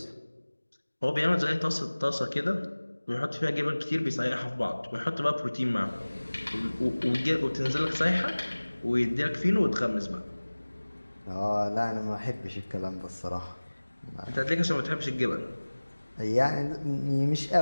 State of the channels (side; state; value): both; inverted; correlation -1.00